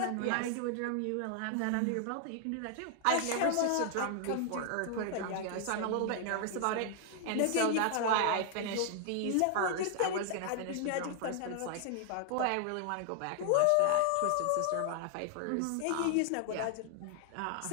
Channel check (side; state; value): both; different; correlation 0.00